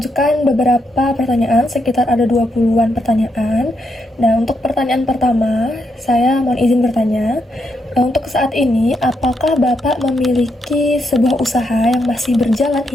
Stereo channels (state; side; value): normal; both; correlation 0.80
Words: beberapa pertanyaan, sekitar ada 20-an pertanyaan. Nah, untuk pertanyaan pertama, saya mohon izin bertanya. Untuk saat ini, apakah Bapak memiliki sebuah usaha yang masih berjalan